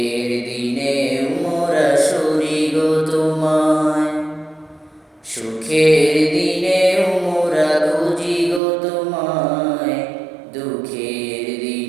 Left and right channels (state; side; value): drops out; left; at 8.6 s